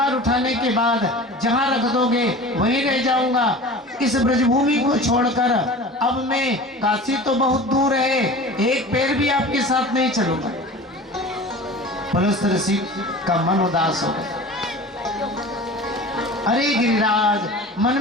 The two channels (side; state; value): both; normal; correlation 0.37